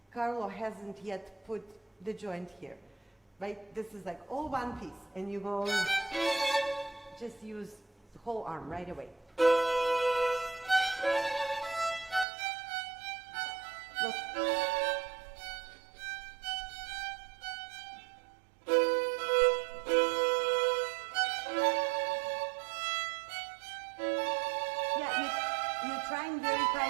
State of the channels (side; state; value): left; drops out; at 12.2 s